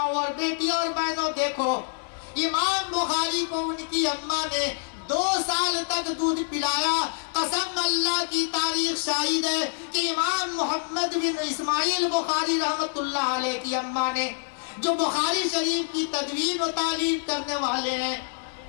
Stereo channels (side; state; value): right; silent; digital silence